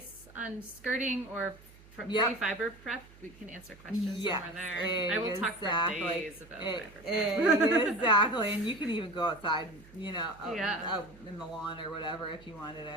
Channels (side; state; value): right; noise; hum, 23 dB below the sound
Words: on skirting or pre-fiber prep, we can answer questions somewhere there. I will talk for days about fiber prep. Exactly, and you can even go outside, out in the lawn or whatever if you wanted.